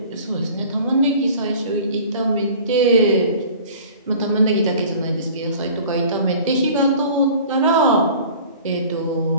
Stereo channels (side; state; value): both; inverted; correlation -0.45